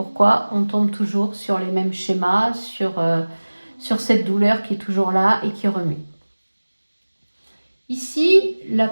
on tombe toujours sur les mêmes schémas, sur sur cette douleur qui est toujours là et qui remue. Ici, la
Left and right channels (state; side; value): inverted; both; correlation -1.00